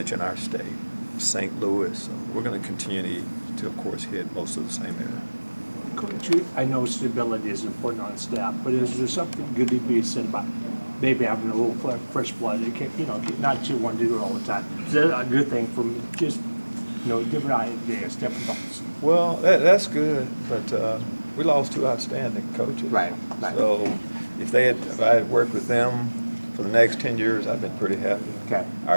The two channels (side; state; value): both; inverted; correlation -1.00